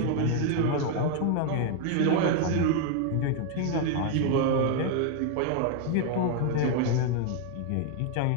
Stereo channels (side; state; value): both; different; correlation 0.00